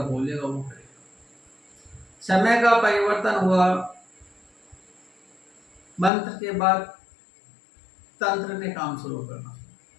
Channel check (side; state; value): right; drops out; at 6.1 s